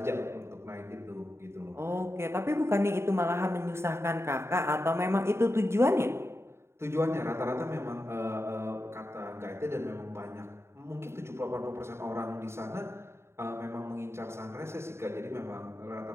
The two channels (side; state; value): left; late; 0.13 ms